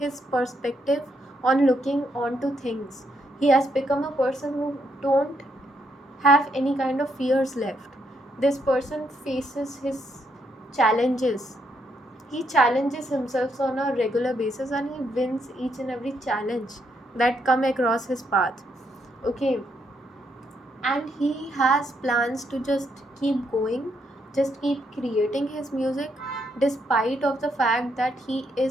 perspective on looking onto things. He has become a person who don't have any kind of fears left. This person faces his challenges. He challenges himself on a regular basis and he wins each and every challenge that come across his path. Okay, and he has plans to just keep going, just keep creating his music despite of the fact that he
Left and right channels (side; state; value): both; normal; correlation 0.76